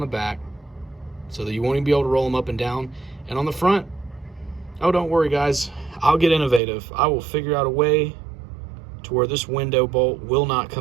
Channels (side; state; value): left; drops out; at 6.6 s